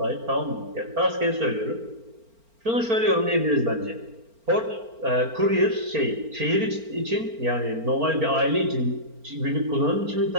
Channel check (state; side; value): late; left; 4.4 ms